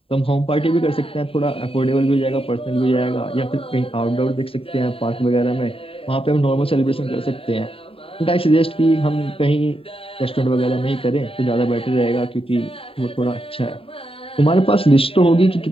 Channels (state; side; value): late; right; 0.27 ms